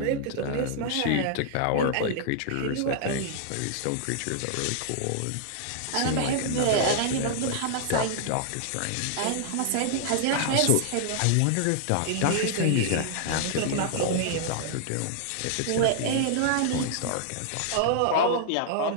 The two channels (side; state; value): both; different; correlation -0.01